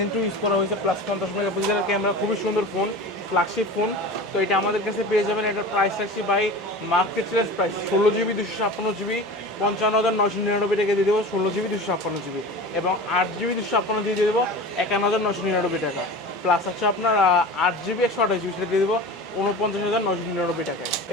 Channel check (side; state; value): both; normal; correlation 0.33